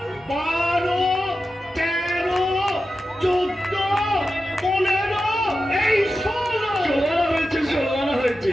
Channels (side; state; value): both; normal; correlation 0.92